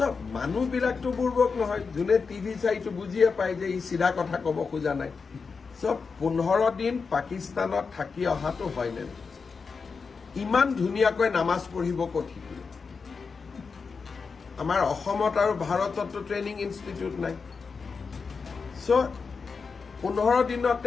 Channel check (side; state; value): right; quieter; 5.1 dB